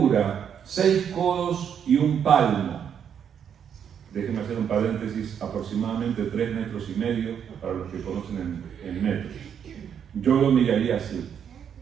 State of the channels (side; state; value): left; quieter; 8.2 dB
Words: 6 codos y un palmo. Déjenme hacer un paréntesis, aproximadamente 3,5 metros, para los que conocen en metros. Yo lo miraría así.